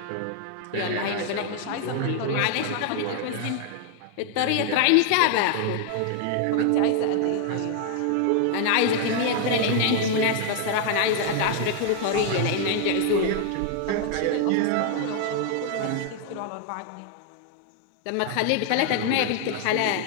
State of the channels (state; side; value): different; both; correlation 0.00